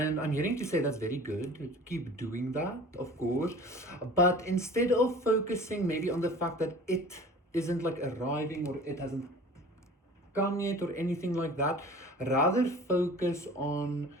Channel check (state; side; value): normal; both; correlation 0.42